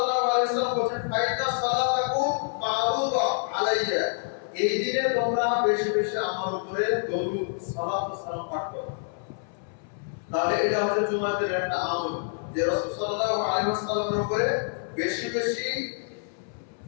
আলাইহি ওয়াসাল্লাম বলেন, ফাইদা সালাতাকুম মারুদা আলাইয়া, এই দিনে তোমরা বেশি বেশি আমার উপরে দরুদ সালাত ও সালাম পাঠ করো। তাহলে এটা হচ্ছে জুমার দিনের একটা আমল যে রাসূল সাল্লাল্লাহু আলাইহি ওয়াসাল্লামের উপরে বেশি বেশি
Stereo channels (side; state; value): right; silent; 60 dB below the other